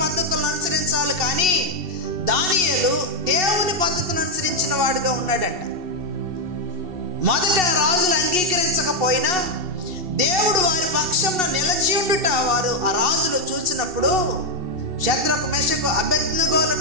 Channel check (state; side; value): late; left; 2.7 ms